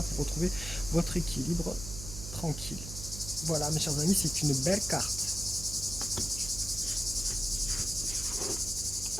pour retrouver votre équilibre tranquille. Voilà mes chers amis, c'est une belle carte.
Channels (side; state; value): right; noise; hum, 9 dB below the sound